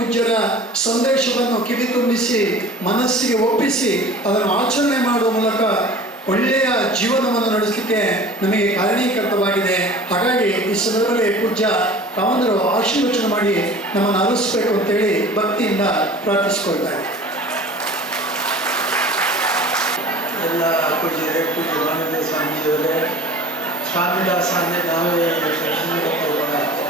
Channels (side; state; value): both; normal; correlation 0.43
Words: ಸಂದೇಶವನ್ನು ಕಿವಿ ತುಂಬಿಸಿ ಮನಸ್ಸಿಗೆ ಒಪ್ಪಿಸಿ ಅದನ್ನು ಆಚರಣೆ ಮಾಡುವ ಮೂಲಕ ಒಳ್ಳೆಯ ಜೀವನವನ್ನು ನಡೆಸಲಿಕ್ಕೆ ನಮಗೆ ಕಾರಣೀಕರ್ತವಾಗಿದೆ. ಹಾಗಾಗಿ ಈ ಸಂದರ್ಭದಲ್ಲಿ ಪೂಜ್ಯ ಕಾಮಂದರು ಆಶೀರ್ವಚನ ಮಾಡಿ ನಮ್ಮನ್ನು ಅರಳಿಸಬೇಕು ಅಂತೇಳಿ ಭಕ್ತಿಯಿಂದ ಪ್ರಾರ್ಥಿಸಿಕೊಳ್ತಾರೆ. ಎಲ್ಲ ಪೂಜ್ಯರೇ, ಪೂಜ್ಯ ಮಾನವ ಸ್ವಾಮೀಜಿಯವರೇ, ಸ್ವಾಮಿದಾಸ ಅಂದರೆ ನಾವೇ ಕೂಡ